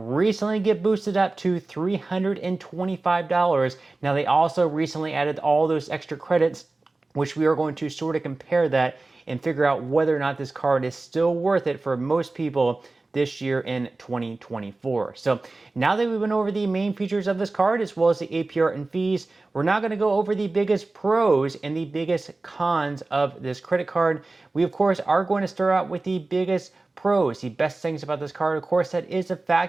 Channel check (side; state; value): left; quieter; 3.3 dB